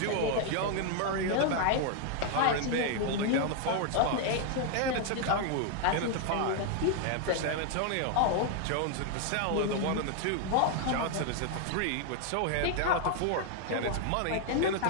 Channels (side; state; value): both; different; correlation 0.00